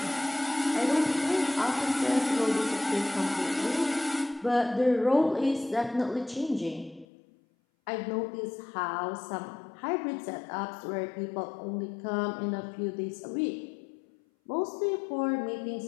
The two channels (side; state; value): right; drops out; at 7.1 s